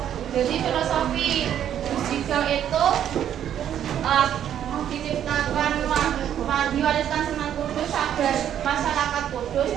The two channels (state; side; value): quieter; left; 10.1 dB